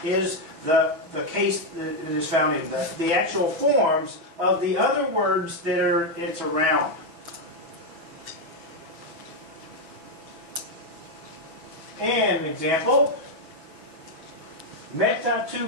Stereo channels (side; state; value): left; late; 6.2 ms